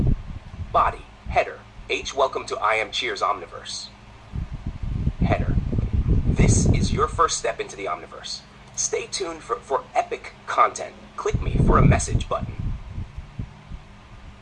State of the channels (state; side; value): identical; both; correlation 1.00